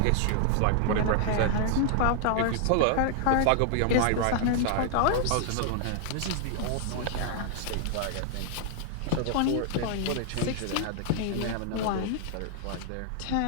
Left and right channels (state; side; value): different; both; correlation 0.00